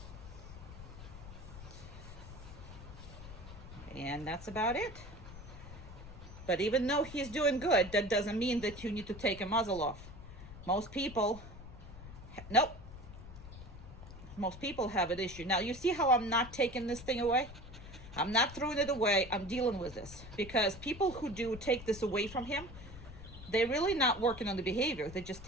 And that's about it. But even though he's doing good, that doesn't mean that you need to take a muzzle off. Most people, nope. Most people have an issue. Now, you see how I'm not taking this thing away? I'm not throwing it away. I'm dealing with this. Because people who do take this away from him, they're really not working on the behavior. They just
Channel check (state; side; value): noise; left; rumble, 14 dB below the sound